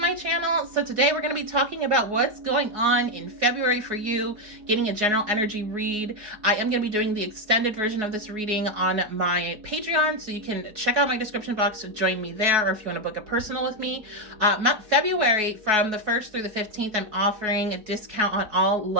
channel. So today we're going to be talking about what's going on in February for you, getting a general energy read. I am going to be doing the extended version of this reading on my Patreon, so you can check out my description box to join me there, or if you want to book a personal with me. February, from the 1st through the 15th, I'm offering a discount on all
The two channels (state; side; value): late; left; 4.7 ms